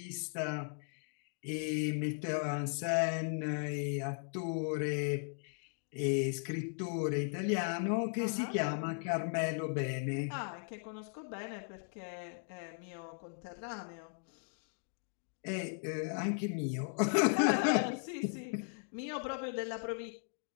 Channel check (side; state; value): right; silent; 53 dB below the other